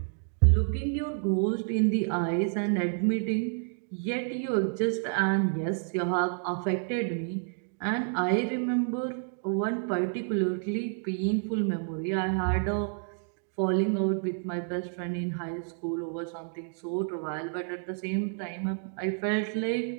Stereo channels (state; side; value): silent; left; 58 dB below the other